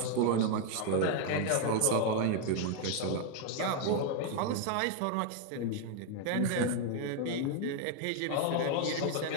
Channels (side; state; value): both; different; correlation 0.01